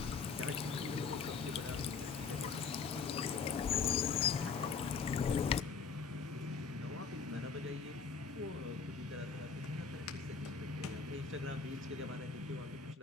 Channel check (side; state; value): right; quieter; 5.4 dB